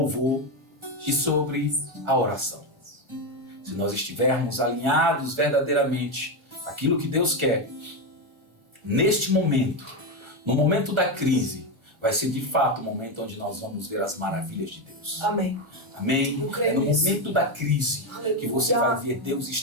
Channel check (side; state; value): left; late; 1.4 ms